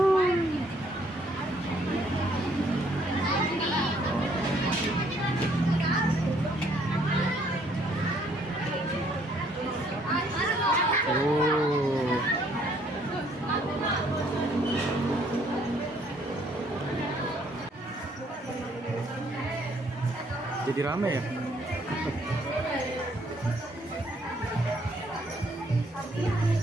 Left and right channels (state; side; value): normal; both; correlation 0.65